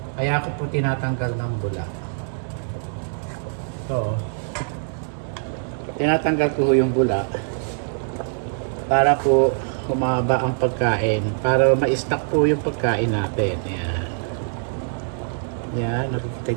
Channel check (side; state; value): left; silent; digital silence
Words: Kaya ako po tinatanggal ng bula. So, tinatanggal ko yung bula para po humaba ang pagkain, para ma-stock po yung pagkain natin. Yan. Yan, nakikita